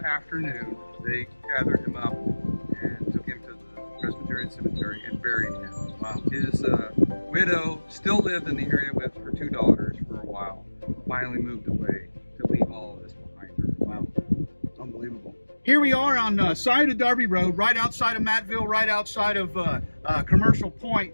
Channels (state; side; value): inverted; both; correlation -1.00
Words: afternoon, they gathered him up and took him to the Presbyterian Cemetery and buried him. Wow. His widow still lived in the area with her two daughters for a while. finally moved away to leave all of this behind her. Wow, unbelievable. Here we are on side of Darby Road, right outside of Mattville, right outside of Commercial